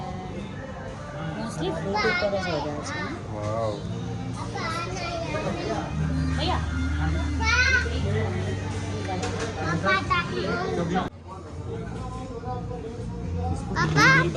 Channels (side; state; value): both; identical; correlation 1.00